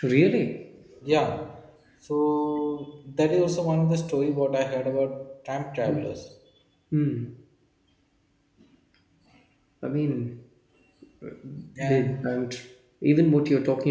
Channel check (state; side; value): identical; both; correlation 1.00